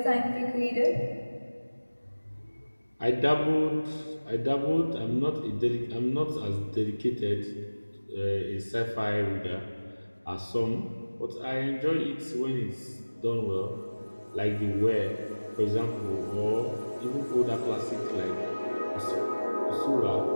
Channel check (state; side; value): inverted; both; correlation -1.00